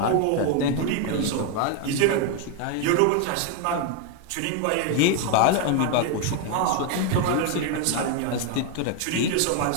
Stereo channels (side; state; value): both; different; correlation 0.01